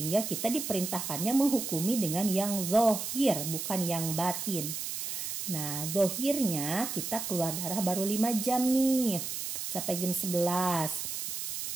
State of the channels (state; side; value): noise; right; hiss, 4 dB below the sound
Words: kita diperintahkannya menghukumi dengan yang zahir bukan yang batin. Nah, zahirnya kita keluar darah baru 5 jam nih. Sampai jam